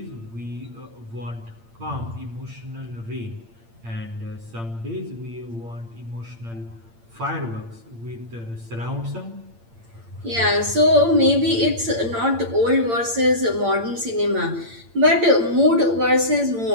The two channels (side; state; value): left; late; 8.8 ms